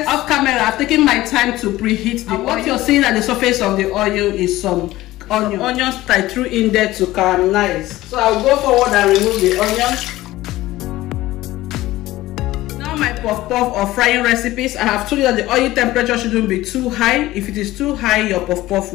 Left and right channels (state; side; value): quieter; right; 16.8 dB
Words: Off camera, I've taken my time to preheat the oil. What you're seeing at the surface of the oil is some onions I threw in there to caramelize. So I'll go forward and remove the onions. Now my puff-puff or frying recipes, I have told you that the oil temperature shouldn't be too high. If it is too high, your puff-puff